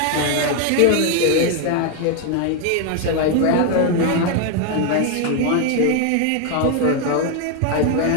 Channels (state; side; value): different; both; correlation 0.01